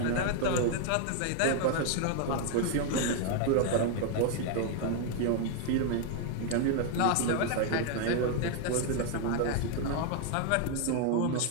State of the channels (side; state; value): both; different; correlation 0.00